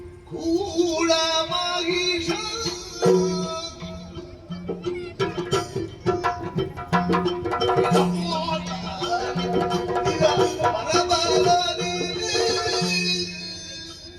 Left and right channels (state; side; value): identical; both; correlation 1.00